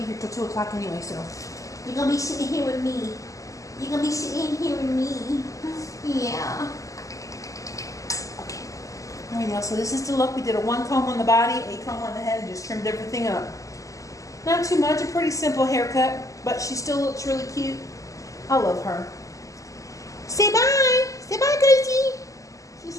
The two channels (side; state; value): right; late; 0.16 ms